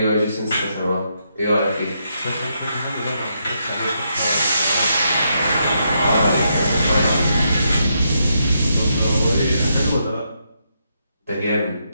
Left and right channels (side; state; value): both; inverted; correlation -0.79